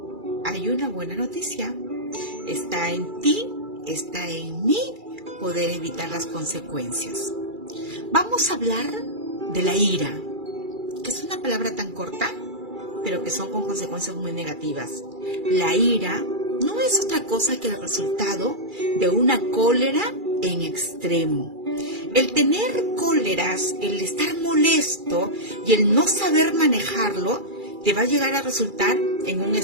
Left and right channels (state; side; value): late; left; 2.3 ms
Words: hay una buena noticia. Está en ti, está en mí poder evitar las consecuencias. Vamos a hablar de la ira, que es una palabra tan corta, pero que son con consecuencias muy negativas. La ira no es otra cosa que el resultado de una cólera en extremo. El tener cóleras, el estar molesto y el no saber manejarlo, te va a llegar a resultar en un